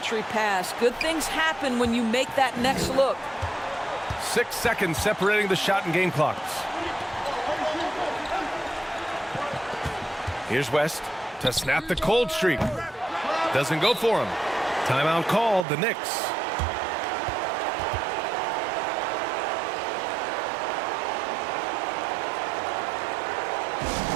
pass. Good things happen when you make that next look. 6 seconds separating the shot and game clocks. Here's West to snap the cold streak. Doesn't go for him. Timeout called, the Knicks.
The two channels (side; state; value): left; drops out; at 15.7 s